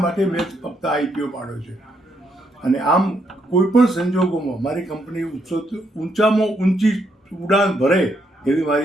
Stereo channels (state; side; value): normal; both; correlation 0.76